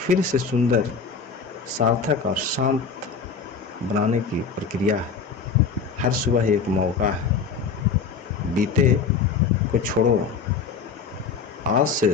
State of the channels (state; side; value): quieter; right; 5.5 dB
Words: से सुंदर, सार्थक और शांत बनाने की प्रक्रिया है। हर सुबह एक मौका है। बीते को छोड़ो, आज